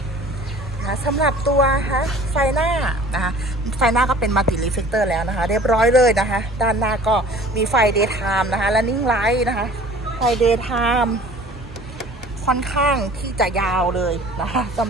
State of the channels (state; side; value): noise; right; hum, 19 dB below the sound